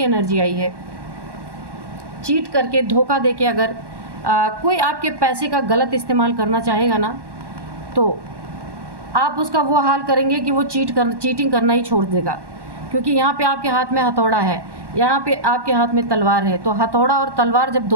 एनर्जी आई है, चीट करके, धोखा देके अगर कोई आपके पैसे का गलत इस्तेमाल करना चाहेगा ना, तो आप उसका वो हाल करेंगे कि वो चीटिंग करना ही छोड़ देगा। क्योंकि यहाँ पे आपके हाथ में हथौड़ा है, यहाँ पे आपके हाथ में तलवार है। तो हथौड़ा और तलवार जब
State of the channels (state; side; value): late; left; 1.1 ms